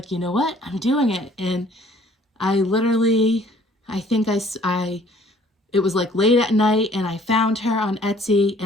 you know what, I'm doing it. And I literally, I think it was like late at night, and I found her on Etsy,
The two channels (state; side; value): normal; both; correlation 0.57